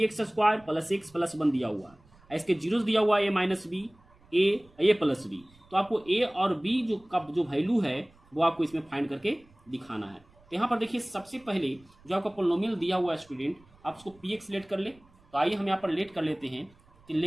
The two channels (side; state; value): right; noise; rumble, 29 dB below the sound